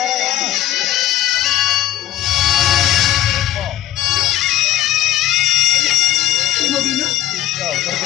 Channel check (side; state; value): right; quieter; 13.1 dB